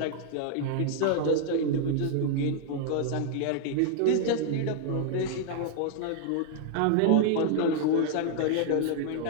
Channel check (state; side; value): different; both; correlation -0.01